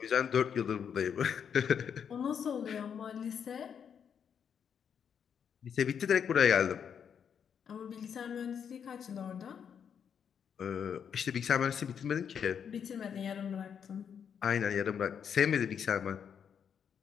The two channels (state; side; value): quieter; right; 7.7 dB